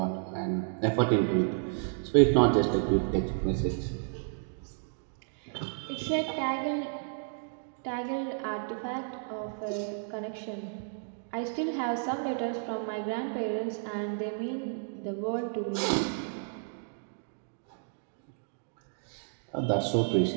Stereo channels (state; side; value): silent; left; digital silence